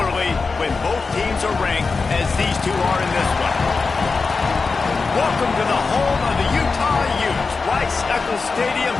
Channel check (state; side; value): quieter; right; 4.4 dB